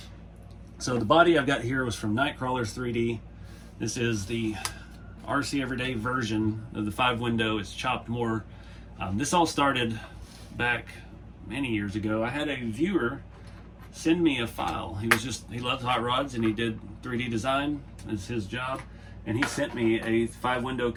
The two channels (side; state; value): both; identical; correlation 1.00